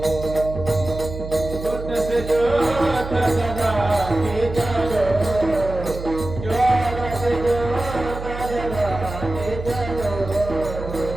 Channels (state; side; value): noise; right; hum, 9 dB below the sound